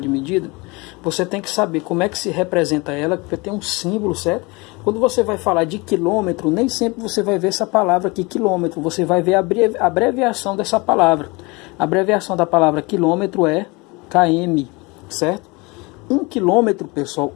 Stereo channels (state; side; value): quieter; right; 26.1 dB